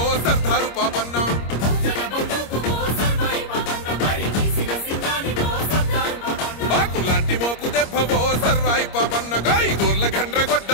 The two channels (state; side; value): late; right; 25 ms